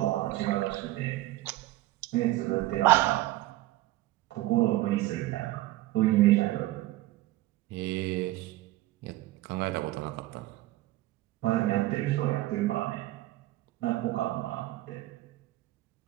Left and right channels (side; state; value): left; quieter; 17.2 dB